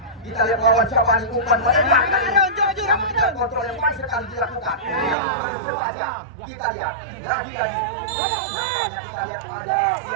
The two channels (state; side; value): drops out; left; at 5.2 s